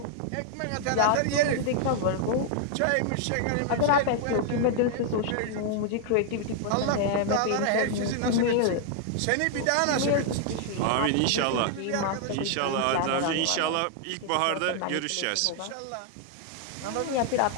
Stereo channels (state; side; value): different; both; correlation 0.00